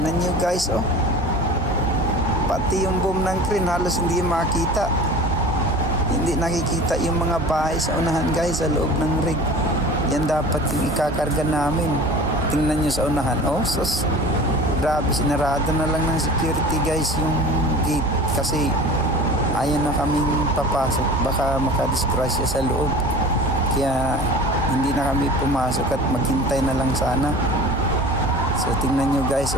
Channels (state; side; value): normal; both; correlation 0.39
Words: nyo guys oh. Pati yung boom ng crane halos hindi makita. Hindi nakikita yung mga bahay sa unahan guys sa loob ng rig. Yan dapat yung ikakarga namin. Tingnan nyo sa unahan. Oh, sus. Grabe, sinarado na lang ng security guys yung gate kasi ayaw na kaming papasok, baka makadisgrasya sa loob, kaya hindi na kami pumasok at maghintay na lang sana. So tingnan nyo guys,